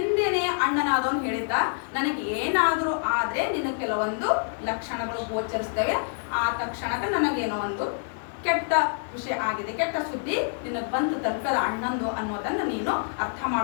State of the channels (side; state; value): right; silent; digital silence